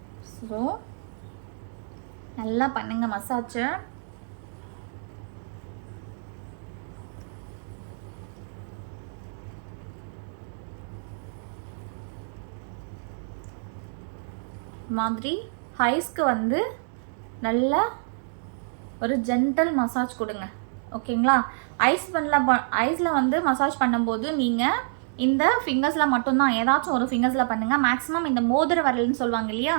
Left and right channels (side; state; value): left; silent; digital silence